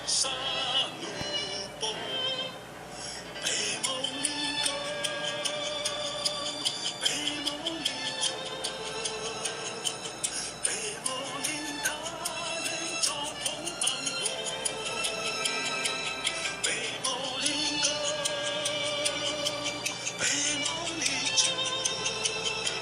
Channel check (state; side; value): identical; both; correlation 1.00